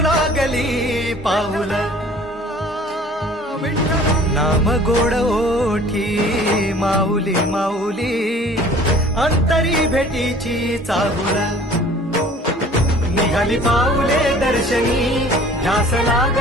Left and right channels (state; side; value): normal; both; correlation 0.49